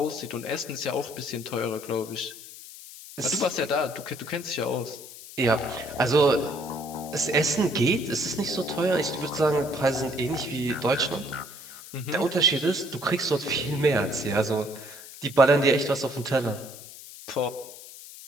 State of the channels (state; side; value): noise; left; hiss, 15 dB below the sound